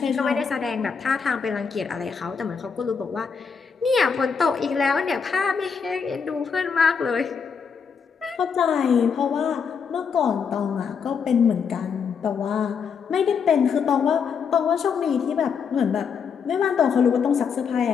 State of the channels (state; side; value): quieter; right; 6.2 dB